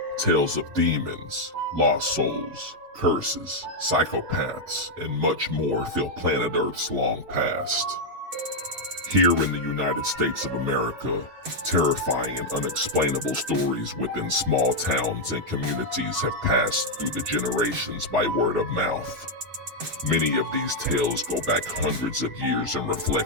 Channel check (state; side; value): late; left; 7.8 ms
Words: Tales of demons, lost souls, curses, psychopaths, and much more fill planet Earth's long past. Here in the United States of America, terrifying and unexplainable stories within small towns and communities have passed through the generations by word of mouth. Many of these tales go back hundreds of years and